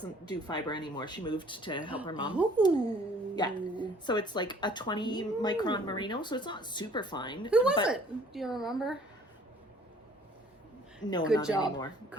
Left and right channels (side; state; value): both; normal; correlation 0.55